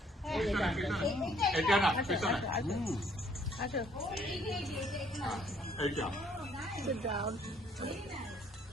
পিছনে, পিছনে। এটা না, পিছনে। Acho. এইটা। Sit down.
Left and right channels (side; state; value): both; normal; correlation 0.63